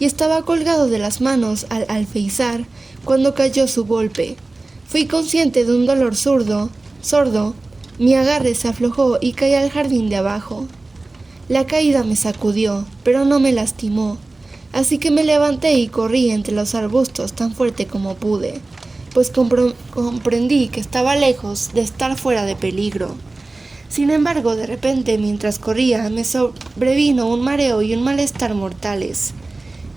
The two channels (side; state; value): left; quieter; 3.2 dB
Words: estaba colgado de las manos al alféizar cuando cayó su golpe. Fui consciente de un dolor sordo. Mi agarre se aflojó y caí al jardín de abajo. La caída me sacudió, pero no me lastimó, así que me levanté y corrí entre los arbustos tan fuerte como pude, pues comprendí que estaba lejos de estar fuera de peligro. Sin embargo, de repente, mientras corría, me sobrevino un mareo y un malestar mortales.